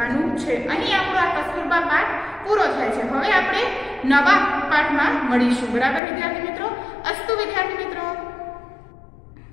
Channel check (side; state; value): right; drops out; at 6.0 s